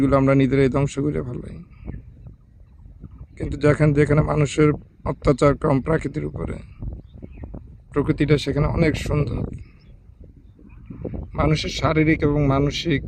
আমরা নিজেরাই ধ্বংস করে ফেলাই। কিন্তু যেখানে মানুষের অত্যাচার কম প্রাকৃতির উপরে, প্রকৃতিটা সেখানে অনেক সুন্দর। মানুষের শারীরিক এবং মানসিক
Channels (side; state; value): both; identical; correlation 1.00